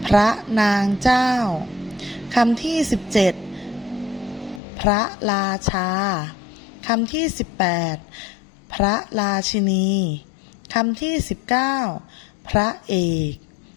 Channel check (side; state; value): right; drops out; at 4.6 s